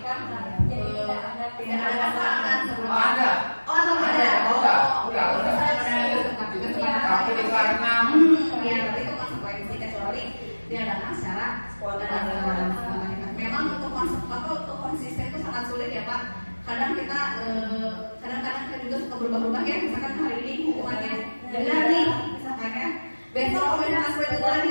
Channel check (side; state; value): both; inverted; correlation -1.00